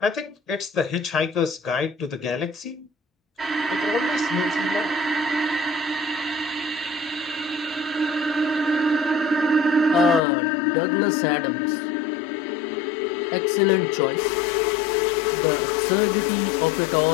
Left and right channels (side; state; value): right; drops out; at 10.2 s